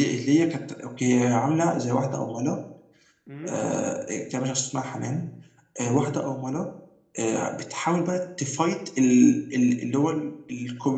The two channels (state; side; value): identical; both; correlation 1.00